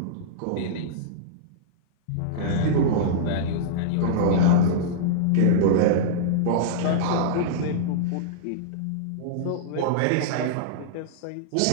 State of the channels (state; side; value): different; both; correlation -0.03